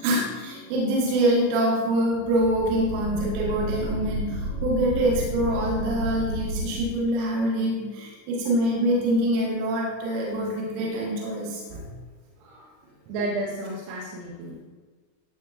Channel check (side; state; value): left; late; 39 ms